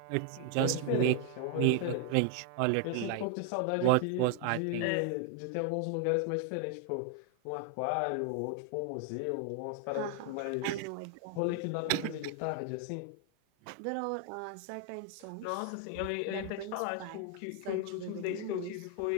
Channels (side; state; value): both; different; correlation 0.00